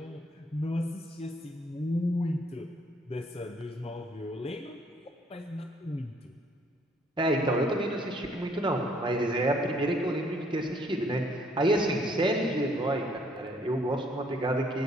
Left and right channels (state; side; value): normal; both; correlation 0.64